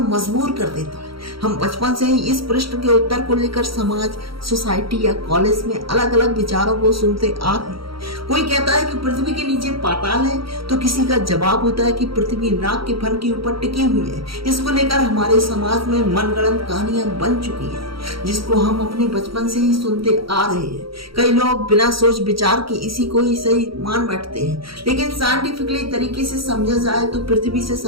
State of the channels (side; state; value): left; late; 0.75 ms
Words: मजबूर कर देता है। हम बचपन से ही इस प्रश्न के उत्तर को लेकर समाज, सोसाइटी या कॉलेज में अलग अलग विचारों को सुनते आ रहे हैं। कोई कहता है कि पृथ्वी के नीचे पाताल है, तो किसी का जवाब होता है कि पृथ्वी नाग के फन के ऊपर टिकी हुई है। इसको लेकर हमारे समाज में मनगढ़ंत कहानियां बन चुकी हैं, जिसको हम अपने बचपन से ही सुनते आ रहे हैं। कई लोग बिना सोच विचार के इसी को ही सही मान बैठते हैं, लेकिन साइंटिफिकली तरीके से समझा जाए तो पृथ्वी से